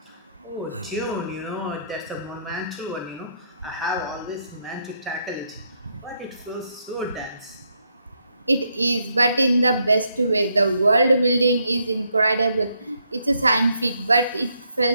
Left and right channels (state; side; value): inverted; both; correlation -0.75